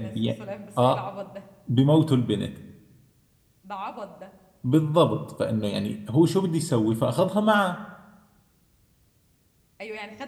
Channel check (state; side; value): identical; both; correlation 1.00